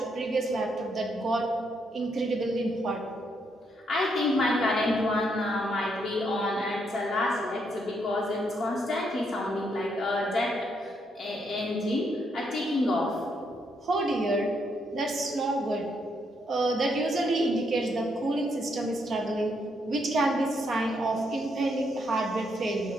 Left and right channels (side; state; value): both; normal; correlation 0.76